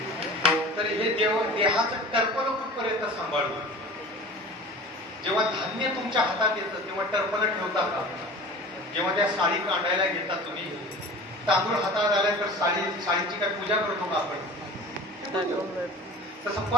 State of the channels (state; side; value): normal; both; correlation 0.39